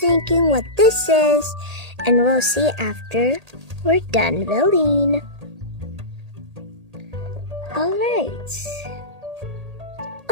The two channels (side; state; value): left; late; 1.8 ms